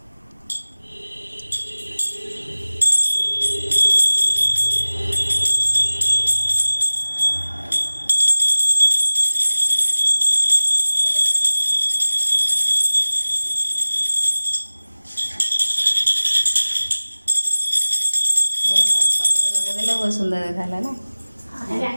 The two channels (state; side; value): inverted; both; correlation -1.00